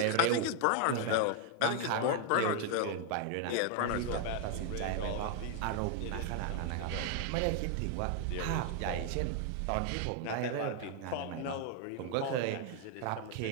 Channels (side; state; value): both; different; correlation 0.00